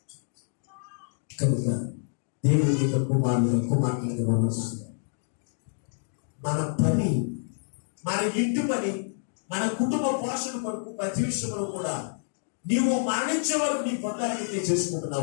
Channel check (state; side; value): silent; right; digital silence